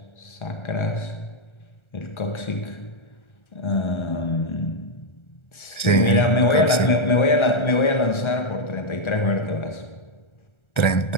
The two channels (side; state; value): right; late; 1.4 ms